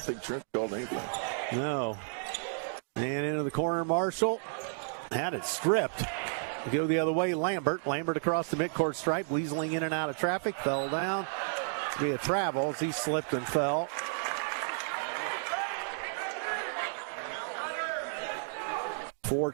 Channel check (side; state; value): left; silent; digital silence